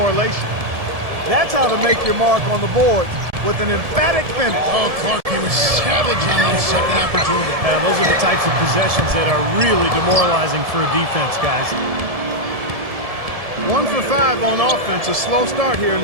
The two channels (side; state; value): left; late; 1.7 ms